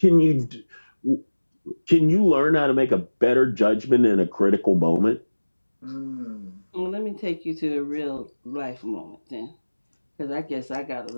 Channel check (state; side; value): inverted; both; correlation -1.00